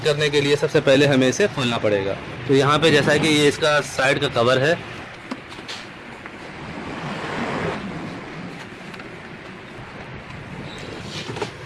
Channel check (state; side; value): identical; both; correlation 1.00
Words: करने के लिए सबसे पहले हमें इसे खोलना पड़ेगा। तो यहाँ पे जैसा कि ये इसका साइड का कवर है,